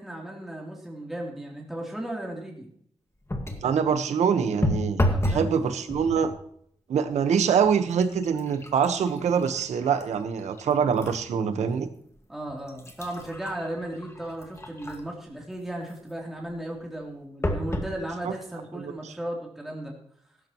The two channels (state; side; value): quieter; left; 4.6 dB